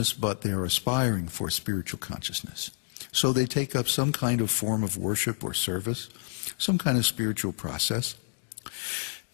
but they're aspiring for spiritual consciousness. So they take up some kind of form of worship or service, some kind of spiritual process.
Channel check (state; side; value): silent; right; digital silence